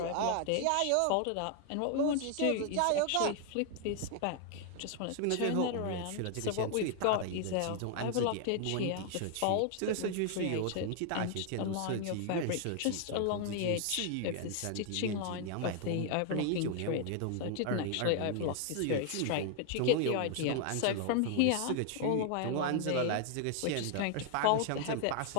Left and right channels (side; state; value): both; different; correlation 0.00